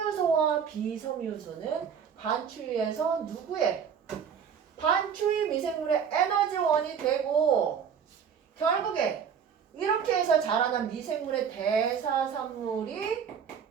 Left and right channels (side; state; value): left; quieter; 7.3 dB